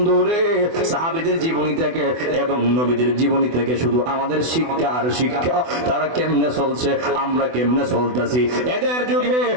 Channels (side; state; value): left; late; 24 ms